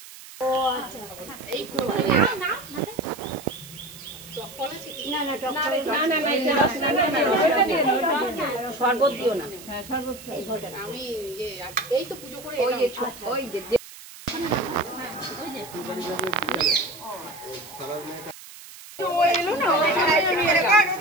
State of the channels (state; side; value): noise; right; hiss, 17 dB below the sound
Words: না না টক না না না, এটা রস না, না, না, ওটা দিয়ে দাও, ওটা দিয়ে দাও। শরবত দিও না। হ্যাঁ শরবত আমি এই তো পুজো করে ওই যে ওই যে